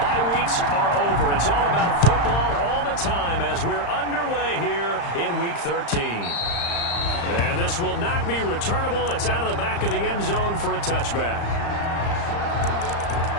weeks are over. It's all about football all the time as we're underway here in Week 13. And this will not be returnable. It's out of the back of the end zone for a touchback.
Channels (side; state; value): right; late; 35 ms